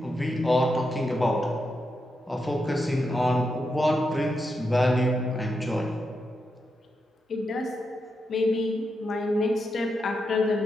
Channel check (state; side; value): normal; both; correlation 0.85